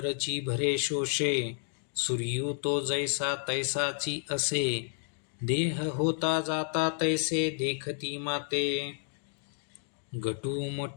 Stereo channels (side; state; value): right; silent; 57 dB below the other